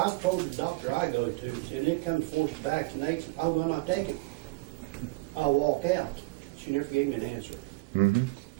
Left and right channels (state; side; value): quieter; left; 24.2 dB